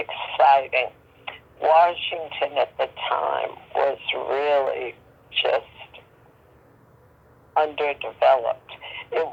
Washington at the time was really just underdeveloped. It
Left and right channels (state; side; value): identical; both; correlation 1.00